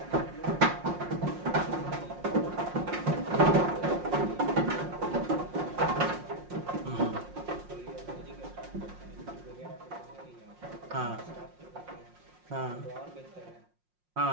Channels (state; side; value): late; left; 5.6 ms